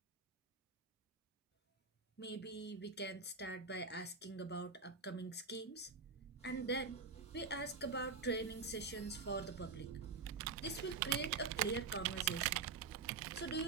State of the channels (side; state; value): left; quieter; 5.0 dB